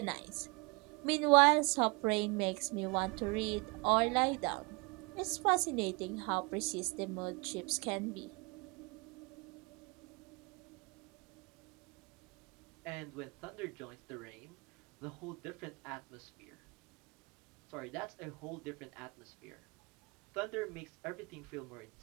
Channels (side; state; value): left; quieter; 28.6 dB